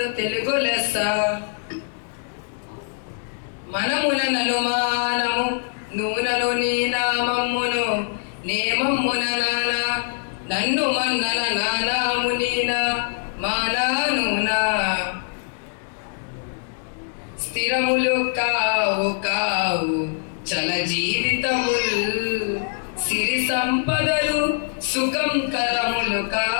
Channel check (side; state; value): right; silent; digital silence